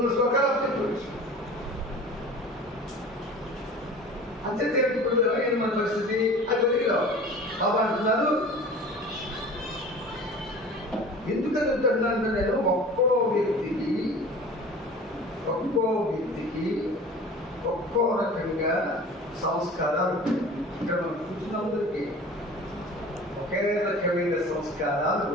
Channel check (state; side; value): normal; both; correlation 0.41